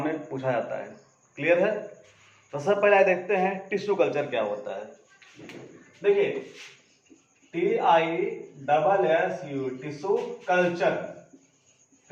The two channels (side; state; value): both; identical; correlation 1.00